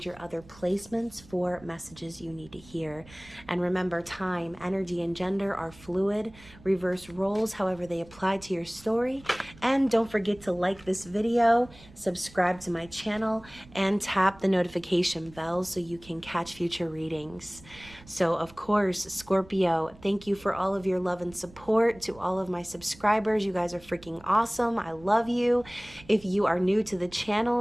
your other placements for messages you need to hear. And remember, time, energy, and gender are fluid. Reverse roles, however they apply to your story. And don't forget to like this video, subscribe to my channel, and tap the notification bell so you can catch future readings. So, of course, Scorpio, thank you for all of your love and support. To all of my subscribers, you guys are freaking awesome. I love you. If you are new to the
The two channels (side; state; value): right; noise; rumble, 22 dB below the sound